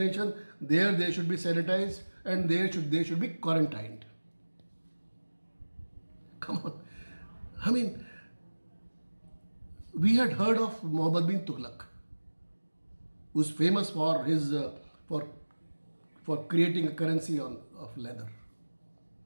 there they should be sanitized and they should be quarantined. Come on. I mean, we had heard of Muhammad bin Tughlaq, who's famous for his for creating a currency of leather.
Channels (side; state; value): both; inverted; correlation -1.00